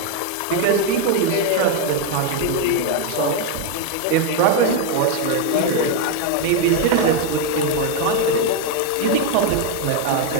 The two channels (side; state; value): both; different; correlation 0.01